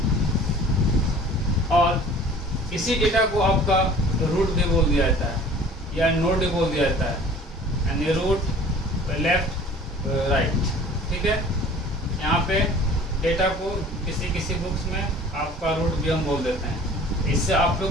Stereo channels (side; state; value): both; normal; correlation 0.47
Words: और इसी डेटा को आपका रूट भी बोल दिया जाता है या नोड भी बोल दिया जाता है, यानी रूट लेफ्ट राइट, ठीक है। यहाँ पे डेटा को किसी बुक्स में आपका रूट भी हम बोल देते हैं, इससे आप